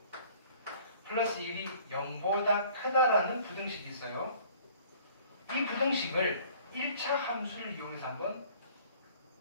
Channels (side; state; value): both; inverted; correlation -0.53